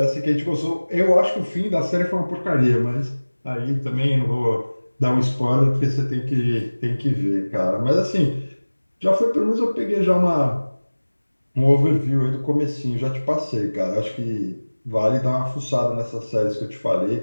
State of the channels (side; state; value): both; inverted; correlation -1.00